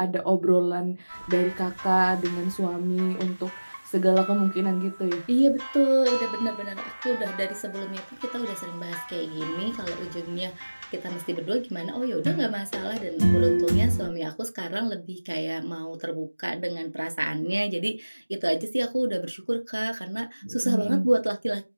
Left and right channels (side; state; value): both; inverted; correlation -1.00